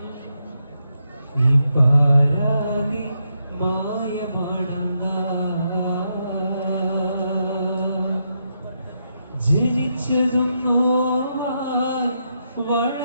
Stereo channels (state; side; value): inverted; both; correlation -0.81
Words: ഈ പാരാകെ മായമാണെന്ന ജനിച്ചതും നോവായി